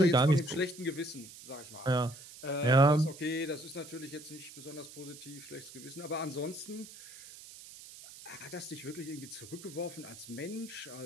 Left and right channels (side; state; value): right; noise; hiss, 16 dB below the sound